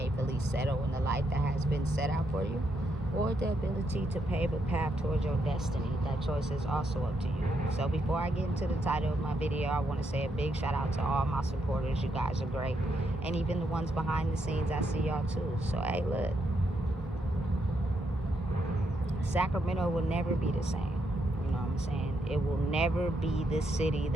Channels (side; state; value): both; normal; correlation 0.79